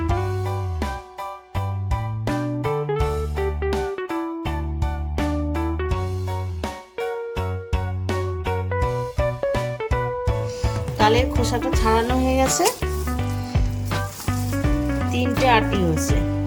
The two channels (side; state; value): both; identical; correlation 1.00